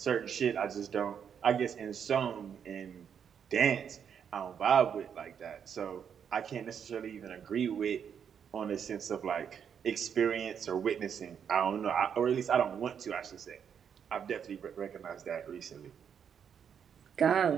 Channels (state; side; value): quieter; left; 7.8 dB